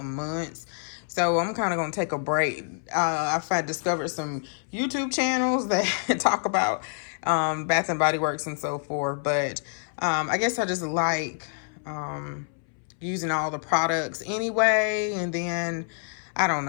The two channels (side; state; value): right; silent; 60 dB below the other